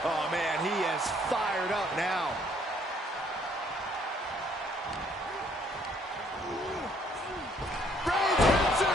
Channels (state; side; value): normal; both; correlation 0.64